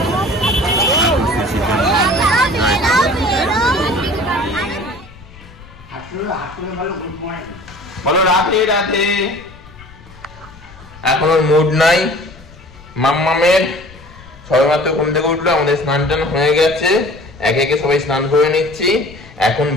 ঠাকুর শ্রী শ্রী প্রেমানন্দ, জয় ঠাকুর। বলো রাধে রাধে। এখন ওর মুড নাই মাম্মামের, সবেমাত্র ঘুম থেকে উঠলো, আমাদের স্নান টান হয়ে গেছে, একে একে সবাই স্নান করে নিচ্ছি। এখন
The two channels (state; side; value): noise; left; rumble, 21 dB below the sound